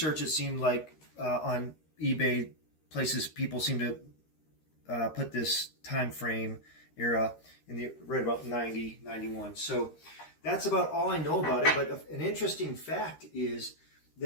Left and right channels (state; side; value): late; right; 13 ms